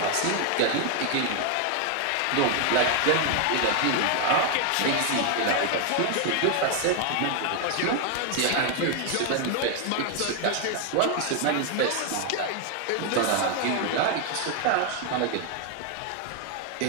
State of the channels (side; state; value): both; different; correlation 0.01